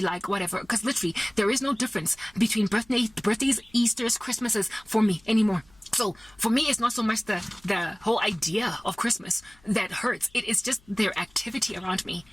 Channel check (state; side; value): noise; left; hum, 29 dB below the sound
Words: like whatever, because literally there is no difference between birthdays, Easters, Christmases for me anymore. So for me, it's not so much the whole idea of Christmas that hurts. It is just their activity around me.